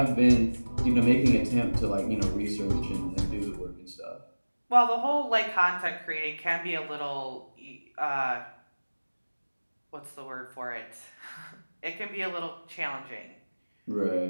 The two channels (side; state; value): both; inverted; correlation -1.00